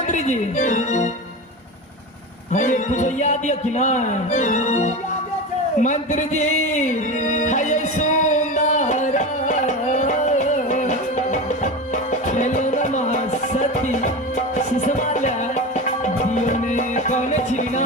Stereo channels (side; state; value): both; normal; correlation 0.25